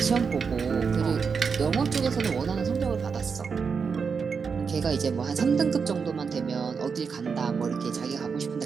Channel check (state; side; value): quieter; left; 5.7 dB